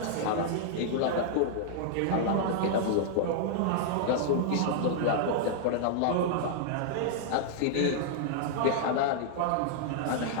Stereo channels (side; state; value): both; different; correlation -0.01